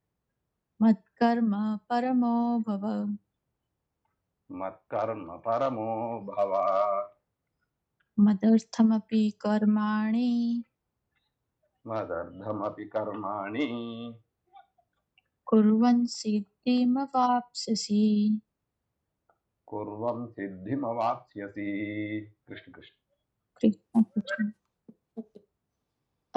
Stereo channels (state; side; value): identical; both; correlation 1.00